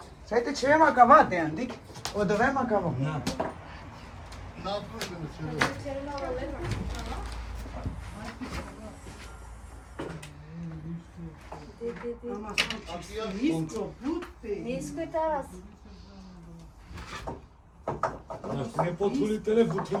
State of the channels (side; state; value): both; identical; correlation 1.00